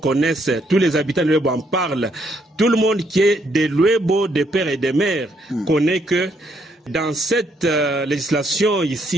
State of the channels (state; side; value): normal; both; correlation 0.72